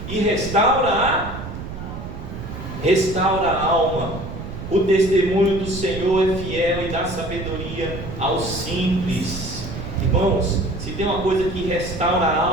e restaura a alma. O testemunho do Senhor é fiel e dá sabedoria aos simples. Irmãos, se tem uma coisa que restaura a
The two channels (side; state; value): right; noise; rumble, 9 dB below the sound